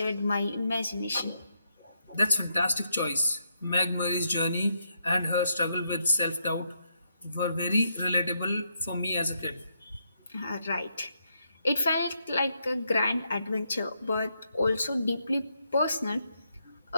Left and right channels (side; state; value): both; inverted; correlation -0.79